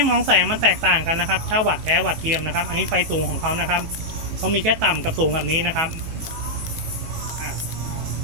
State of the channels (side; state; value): left; late; 18 ms